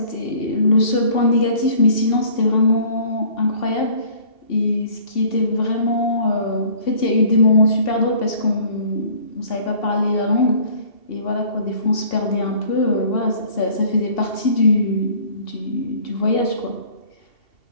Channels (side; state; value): right; late; 2.7 ms